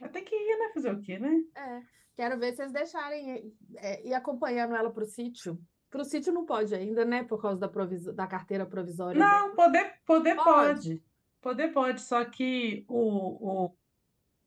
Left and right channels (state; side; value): identical; both; correlation 1.00